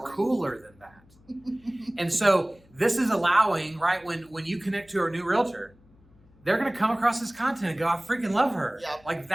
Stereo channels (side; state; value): left; noise; hum, 29 dB below the sound